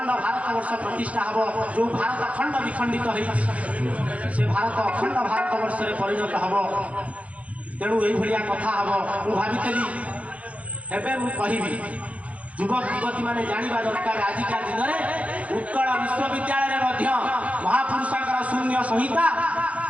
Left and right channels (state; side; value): late; left; 0.066 ms